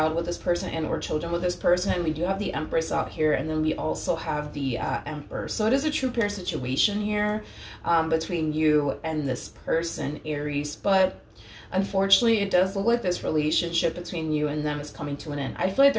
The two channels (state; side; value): identical; both; correlation 1.00